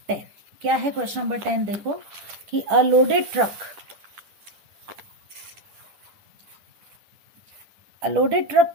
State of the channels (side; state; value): left; late; 10 ms